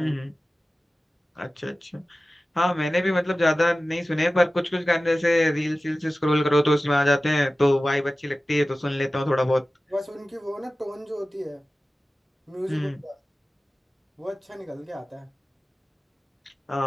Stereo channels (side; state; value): both; normal; correlation 0.96